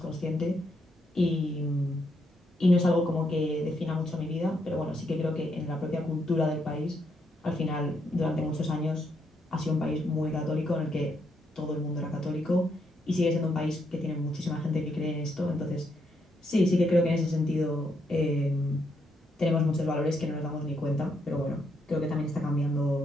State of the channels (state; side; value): normal; both; correlation 0.77